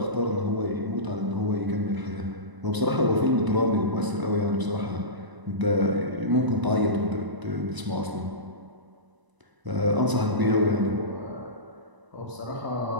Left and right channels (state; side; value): late; left; 1.0 ms